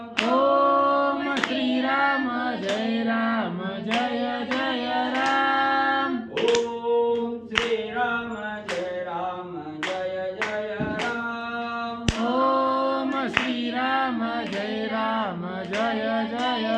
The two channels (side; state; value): both; identical; correlation 1.00